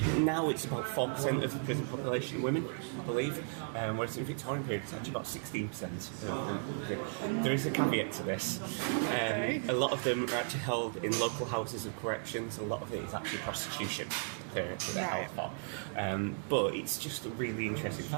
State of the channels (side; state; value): left; silent; 54 dB below the other